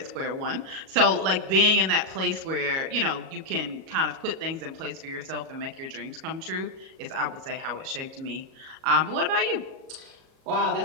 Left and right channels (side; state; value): left; late; 37 ms